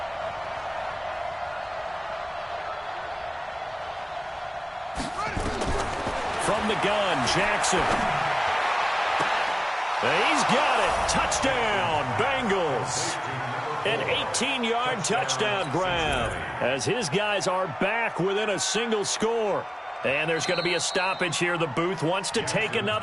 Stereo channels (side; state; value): both; identical; correlation 1.00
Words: From the gun, Jackson. He's got it. Touchdown, Bengals. An 18-yard touchdown grab as his guys are back within a single score. And there's going to be a stoppage here. The booth wants to take